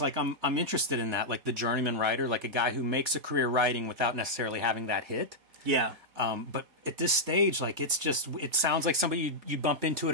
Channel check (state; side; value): late; left; 4.5 ms